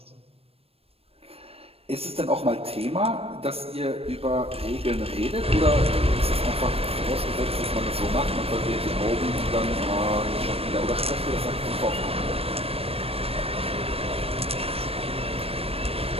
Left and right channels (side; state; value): left; late; 0.28 ms